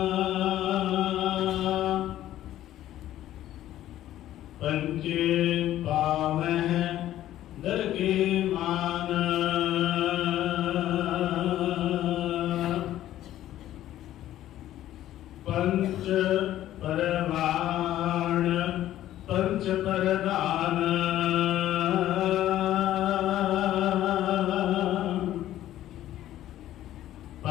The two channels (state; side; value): quieter; right; 13.1 dB